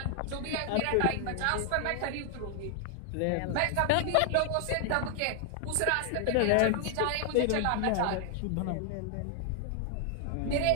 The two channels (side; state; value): both; different; correlation 0.00